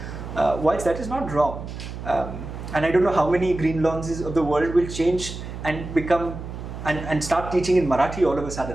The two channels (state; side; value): noise; right; hum, 9 dB below the sound